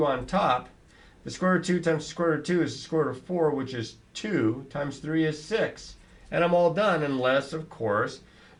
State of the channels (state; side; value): identical; both; correlation 1.00